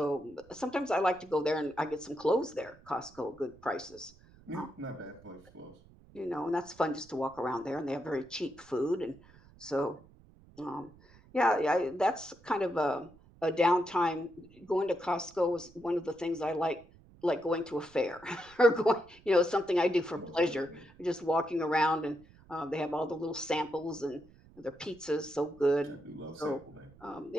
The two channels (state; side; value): noise; right; rumble, 25 dB below the sound